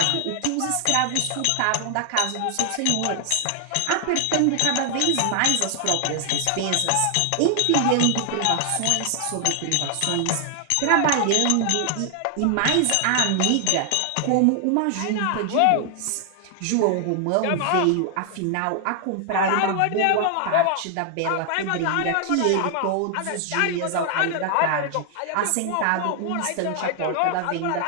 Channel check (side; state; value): both; different; correlation 0.00